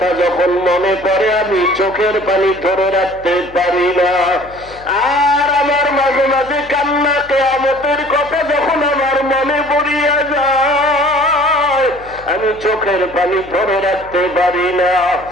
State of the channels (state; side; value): noise; left; hum, 21 dB below the sound